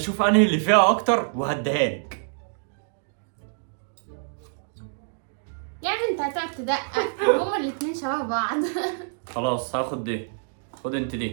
انهي اللي فيها اكتر وهديها لك. يا ابني انت هتقعد تدقق، هما الاتنين شبه بعض. خلاص هاخد دي، خد انت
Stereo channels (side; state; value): left; silent; digital silence